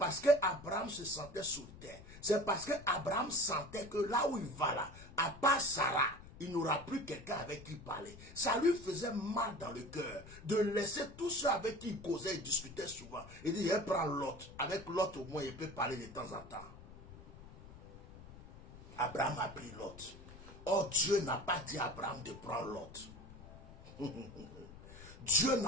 que Abraham se sentait solitaire. C'est parce que Abraham sentait que là où il va là, à part Sarah, il n'aura plus quelqu'un avec qui parler. Ça lui faisait mal dans le cœur de laisser tous ceux avec qui il causait et discutait souvent. Il dit, je prends Lot. Avec Lot, au moins, il peut parler de temps en temps. Abraham a pris Lot. Or, Dieu n'a pas dit à Abraham de prendre Lot. Dieu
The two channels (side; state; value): left; noise; rumble, 17 dB below the sound